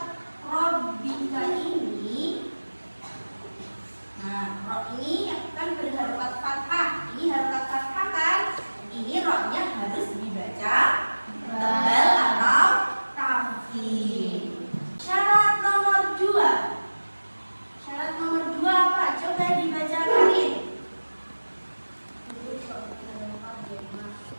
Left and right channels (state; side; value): inverted; both; correlation -1.00